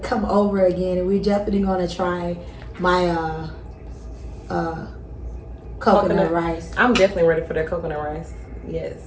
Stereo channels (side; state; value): both; identical; correlation 1.00